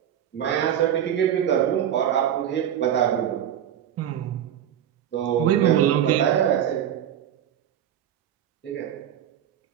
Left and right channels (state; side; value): quieter; left; 10.2 dB